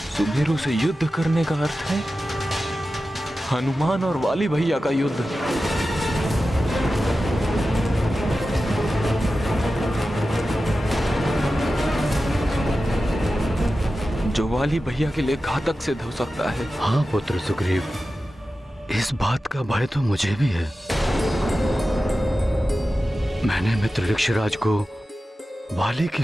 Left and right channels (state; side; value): normal; both; correlation 0.93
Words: सुमेरु से युद्ध करने का अर्थ है हनुमान और वाली भैया का युद्ध। जो वाली भैया के लिए घातक सिद्ध हो सकता है। हाँ पुत्र सुग्रीव, इस बात का भय तो मुझे भी है। मैंने मित्र ऋक्षराज को वाली की